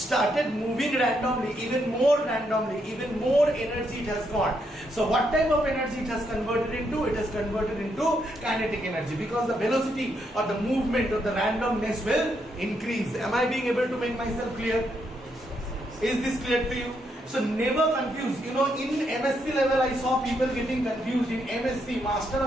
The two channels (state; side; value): normal; both; correlation 0.78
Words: moving randomly, even more energy it has got. So what type of energy it has converted into? It has converted into kinetic energy, because the velocity or the movement or the randomness will increase. Am I being able to make myself clear? Is this clear to you? So never confuse. In MSc level I saw people getting confused. In MSc, Master